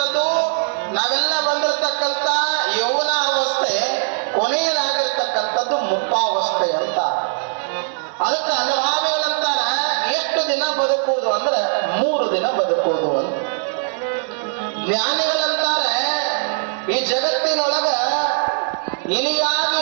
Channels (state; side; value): silent; left; 62 dB below the other